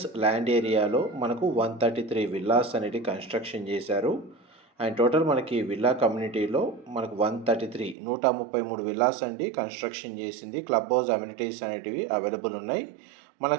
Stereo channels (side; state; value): left; drops out; at 8.0 s